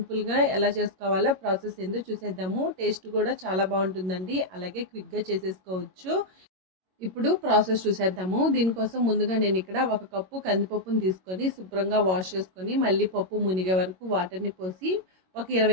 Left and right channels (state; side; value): late; left; 22 ms